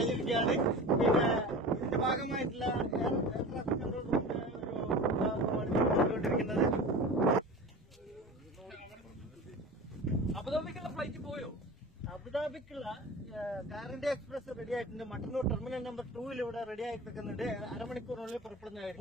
പിന്നെ ഇതിന്റെ ഭാഗമായിട്ടുള്ള എയർ ട്രാഫിക് കൺട്രോൾ റൂമിന്റെ ഒരു കൊണ്ടുകൊണ്ടിരിക്കുന്നത്. അബുദാബിക്കുള്ള ഫ്ലൈറ്റ് പോയോ? അബുദാബിക്കുള്ള കാറിന്റെ എക്സ്പ്രസ് റെഡി ആയിട്ടുണ്ട്. മട്ടന്നൂർ ടെർമിനൽ നമ്പർ 2 ഇവിടെ റെഡി ആയി നിൽക്കുന്നുണ്ട്. അരമണിക്കൂറിനുള്ളിൽ പുറപ്പെടുന്നതായിരിക്കും.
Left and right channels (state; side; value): normal; both; correlation 0.34